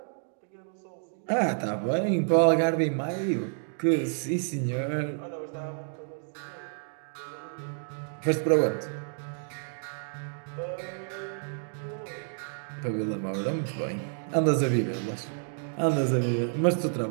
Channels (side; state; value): left; silent; digital silence